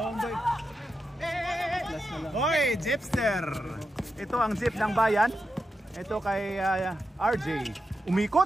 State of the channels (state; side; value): normal; both; correlation 0.88